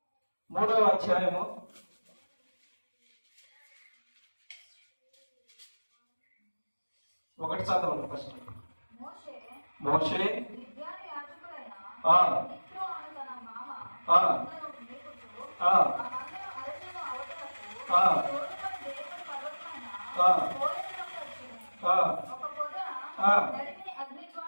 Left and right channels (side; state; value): both; inverted; correlation -1.00